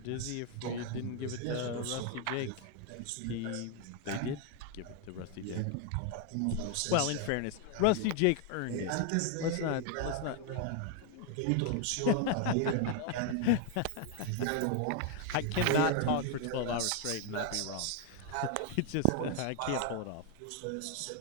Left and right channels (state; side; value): different; both; correlation 0.00